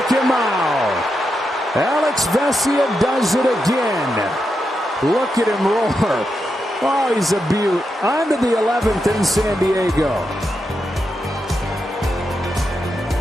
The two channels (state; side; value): normal; both; correlation 0.86